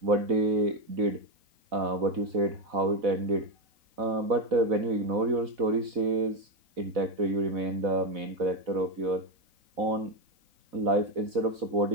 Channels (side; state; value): left; late; 4.1 ms